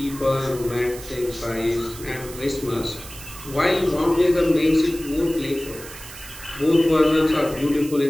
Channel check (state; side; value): noise; right; hiss, 15 dB below the sound